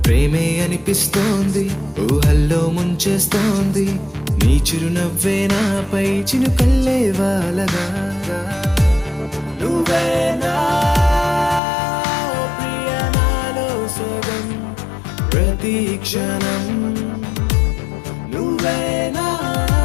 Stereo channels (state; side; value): drops out; right; at 11.6 s